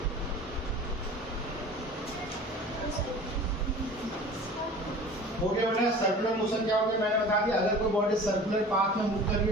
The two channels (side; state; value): both; normal; correlation 0.41